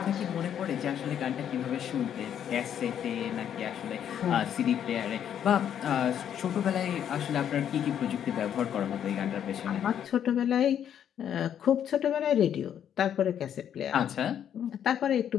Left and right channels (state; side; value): quieter; right; 9.4 dB